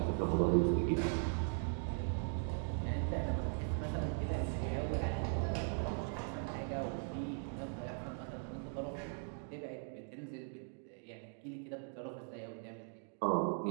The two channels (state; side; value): silent; left; 51 dB below the other